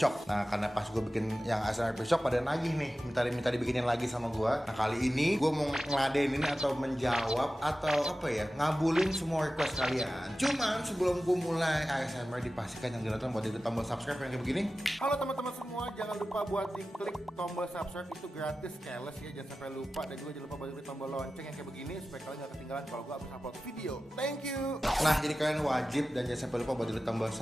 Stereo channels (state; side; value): normal; both; correlation 0.95